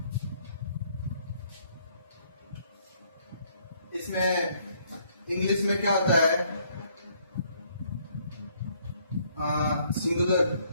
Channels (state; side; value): inverted; both; correlation -0.66